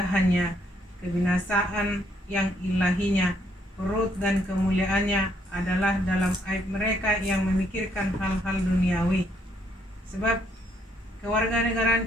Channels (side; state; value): both; normal; correlation 0.70